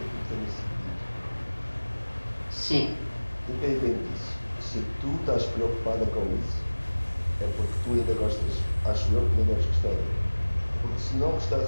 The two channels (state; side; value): inverted; both; correlation -1.00